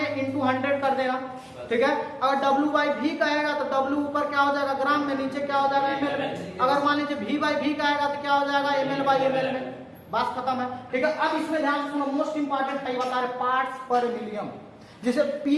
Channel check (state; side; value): identical; both; correlation 1.00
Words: इंटू 100 कर देना, ठीक है। अगर W बाई V कहेगा तो W ऊपर क्या हो जाएगा, ग्राम में, नीचे क्या हो जाएगा, ml में। अगर मान लीजिए V बाई V कहेगा तो क्या हो जाएगा, ml बाई ml में, बस खत्म है, ठीक है। अब इसमें ध्यान सुनो, मोस्ट इंपॉर्टेंट है, बता रहे पार्ट्स पर मिलियन, जिसे